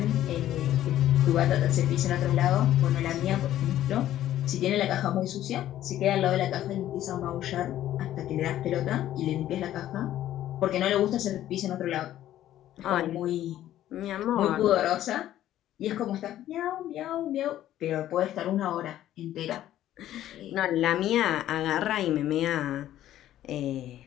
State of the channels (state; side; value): quieter; right; 12.7 dB